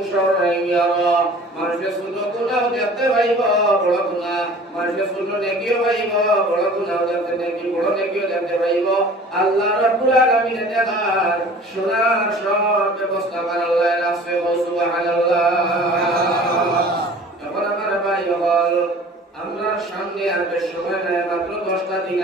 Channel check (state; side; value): normal; both; correlation 0.46